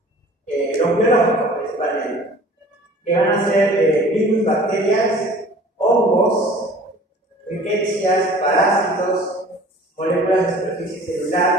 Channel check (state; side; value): normal; both; correlation 0.47